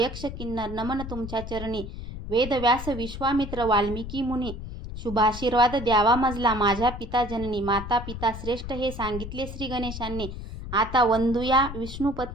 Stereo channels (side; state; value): left; noise; rumble, 9 dB below the sound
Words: किन्नर, नमन तुमच्या चरणी. वेद व्यास विश्वामित्र वाल्मिकी मुनी, शुभाशीर्वाद द्यावा मजला माझ्या पिता जननी. माता पिता श्रेष्ठ हे सांगितले श्री गणेशांनी. आता वंदूया